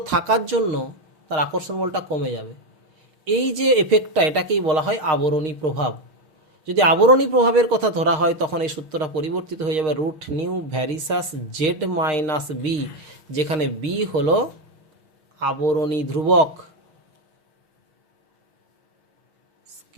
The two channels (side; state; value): left; late; 6.5 ms